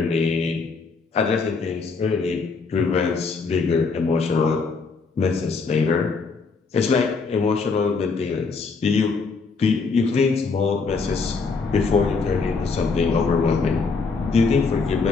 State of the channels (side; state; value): right; quieter; 4.6 dB